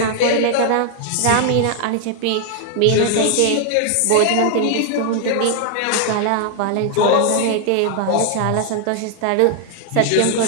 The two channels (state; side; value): different; both; correlation 0.00